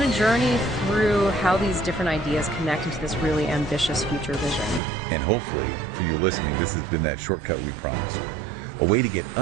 a journey through how these different ideas connect into this really ambitious future vision. And hopefully, for you listening, this has been that shortcut we promised. A way to get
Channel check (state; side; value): drops out; left; at 4.8 s